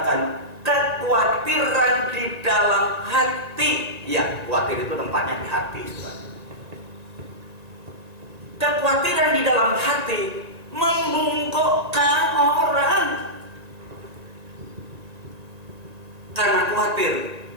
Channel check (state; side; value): late; left; 1.8 ms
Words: kekhawatiran di dalam hati. Ya, khawatir itu tempatnya di hati. Kekhawatiran di dalam hati membungkukkan orang. Karena khawatir,